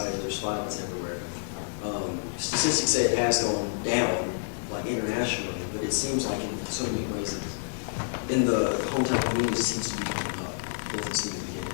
there's violence everywhere. Statistics say it has gone down, like internationally, but it seems like in so many ways, in the hometown community, it seems to be going up. It doesn't seem to be getting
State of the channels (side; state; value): right; silent; digital silence